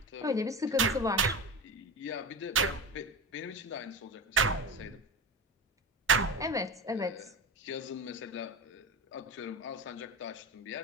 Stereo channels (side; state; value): both; normal; correlation 0.25